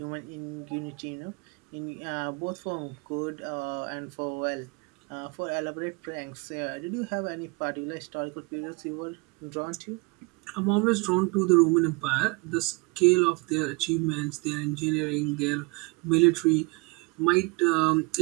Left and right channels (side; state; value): left; quieter; 27.6 dB